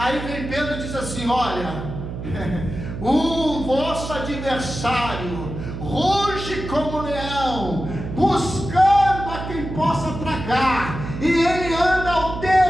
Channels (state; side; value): noise; right; hum, 8 dB below the sound